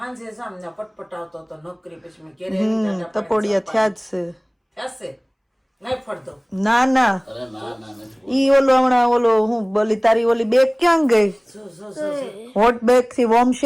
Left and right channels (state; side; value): identical; both; correlation 1.00